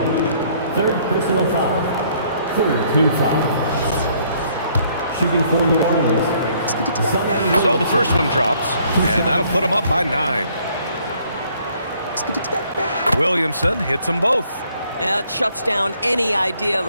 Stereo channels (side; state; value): both; inverted; correlation -0.64